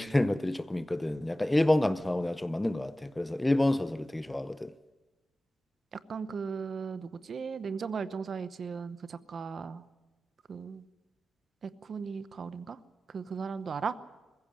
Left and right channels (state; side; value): normal; both; correlation 0.95